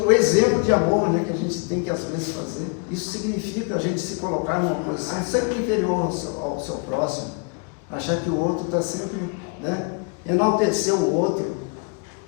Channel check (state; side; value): quieter; right; 35.3 dB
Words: exemplo de amor, né, que a gente tem que às vezes fazer, isso significa a gente se colocar numa posição sempre inferior ao seu próximo, achar que o outro está sempre, né, enaltecer o outro.